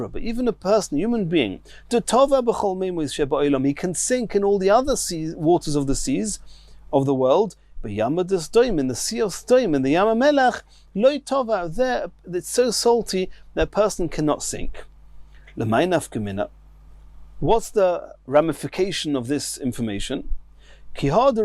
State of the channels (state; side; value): identical; both; correlation 1.00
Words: but even a person, a human being, da tova b'chol meimois sheba oilam, he can sink in all the other waters of the seas of the world. But Yama Sdoim, in the sea of Sdoim, in the Yama Melach, Loi tova, there, it's so salty that a person cannot sink. L'may nafka. What's the ramification of this information? And the